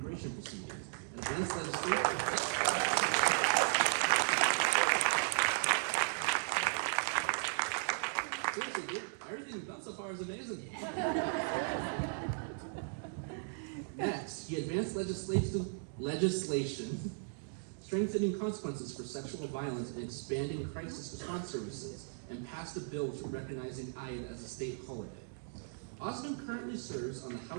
proceedings and advanced legislation. Seriously, everything you've done so far is amazing. Next, he advanced legislation strengthening consequences for sexual violence and expanding crisis response services, and passed a bill recognizing Eid as a state holiday. Osman currently serves on the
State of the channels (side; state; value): left; silent; digital silence